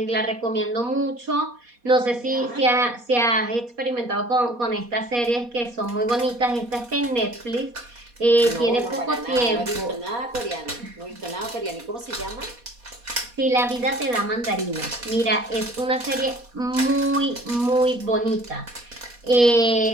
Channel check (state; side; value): late; left; 4.2 ms